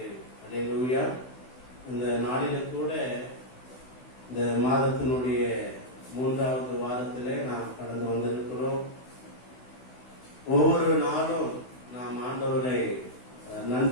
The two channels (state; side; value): late; right; 16 ms